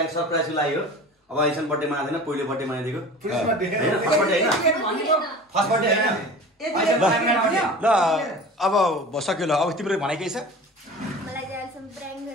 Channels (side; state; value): both; normal; correlation 0.38